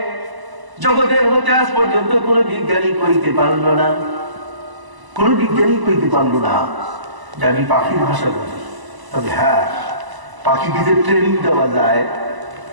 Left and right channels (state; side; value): late; left; 1.0 ms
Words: জগতের মধ্যে আজ পর্যন্ত কোন বিজ্ঞানী কইতে পারলো না, কোন বিজ্ঞানী কইতে পারলো না যে আমি পাখির ভাষা বুঝি। তবে হ্যাঁ, পাখিকে যে ট্রেনিং দেওয়া যায়,